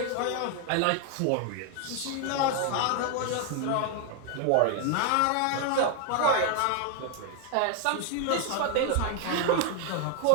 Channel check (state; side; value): different; both; correlation 0.00